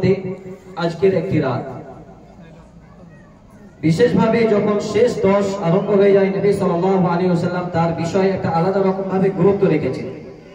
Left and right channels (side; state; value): both; identical; correlation 1.00